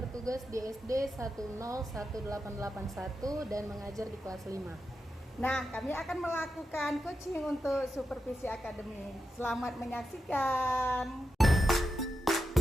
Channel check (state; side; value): normal; both; correlation 0.87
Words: di SD 101881 dan mengajar di kelas 5. Nah, kami akan melakukan coaching untuk supervisi akademik. Selamat menyaksikan.